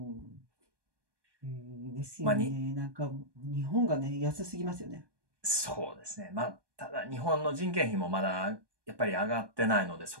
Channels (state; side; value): late; left; 1.2 ms